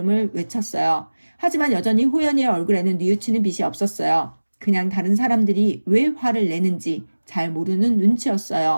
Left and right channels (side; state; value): both; inverted; correlation -1.00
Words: 외쳤어요. 하지만 여전히 호연이의 얼굴에는 뉘우치는 빛이 없었어요. 그냥 다른 사람들이 왜 화를 내는지 잘 모르는